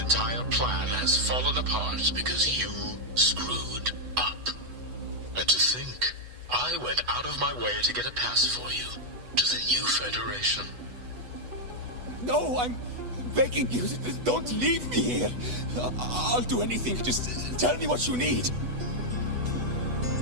plan has fallen apart because you screwed up. And to think, I went out of my way to get a pass for you to the new Federation. No, I'm begging you, don't leave me here. I'll do anything, just tell me what you need.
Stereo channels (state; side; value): late; left; 8.1 ms